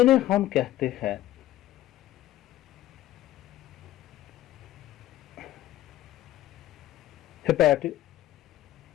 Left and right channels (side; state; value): right; quieter; 14.1 dB